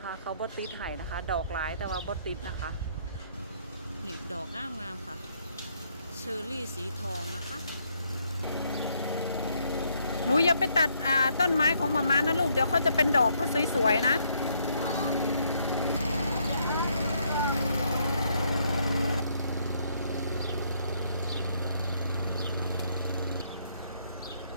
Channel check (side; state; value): both; inverted; correlation -0.71